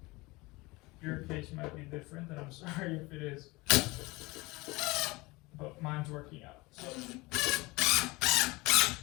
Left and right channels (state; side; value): quieter; right; 23.1 dB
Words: Your case might be different, and I'm sorry if it is. But mine's working out. So